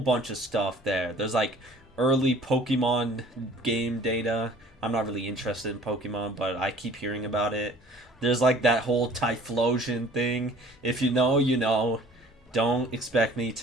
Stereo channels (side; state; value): both; normal; correlation 0.51